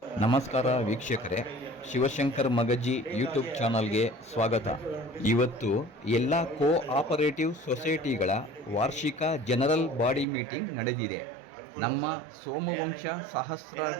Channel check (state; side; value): drops out; left; at 10.2 s